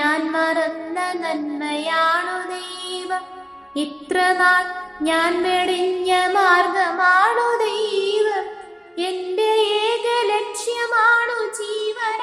മറന്ന നന്മയാണു ദൈവം, ഇത്ര നാൾ ഞാൻ വെടിഞ്ഞ മാർഗമാണു ദൈവം. എന്റെ ഏക ലക്ഷ്യമാണു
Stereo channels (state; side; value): identical; both; correlation 1.00